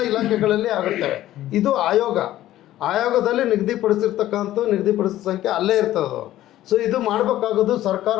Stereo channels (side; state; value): right; quieter; 14.0 dB